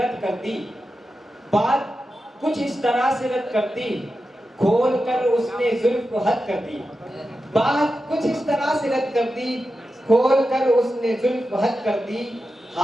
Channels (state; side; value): normal; both; correlation 0.91